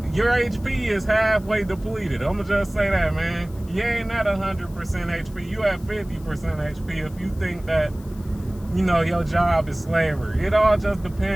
your HP is halfway depleted. I'm gonna just say that, man. You ain't at 100% HP. You at 50% HP if you think that, your job is slavery. It all just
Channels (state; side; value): noise; left; hiss, 25 dB below the sound